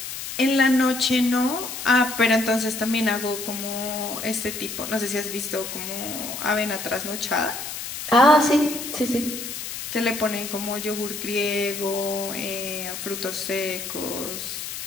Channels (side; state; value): left; noise; hiss, 7 dB below the sound